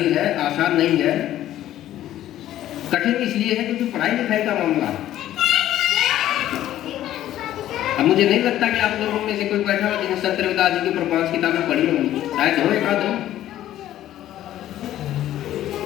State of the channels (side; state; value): right; quieter; 12.9 dB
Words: है, आसान नहीं है। कठिन इसलिए है क्योंकि पढ़ाई लिखाई का मामला है। अब मुझे नहीं लगता कि आप लोगों में से कोई बैठा हो जिन्हें संत रविदास जी की ऊपर 5 किताबें पढ़ी होंगी, शायद हो एक आध।